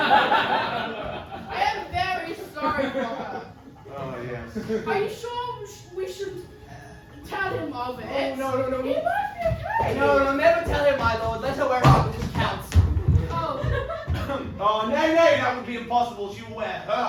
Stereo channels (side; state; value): both; identical; correlation 1.00